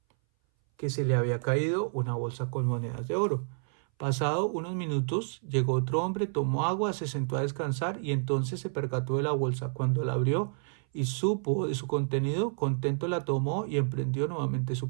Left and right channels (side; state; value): left; silent; 58 dB below the other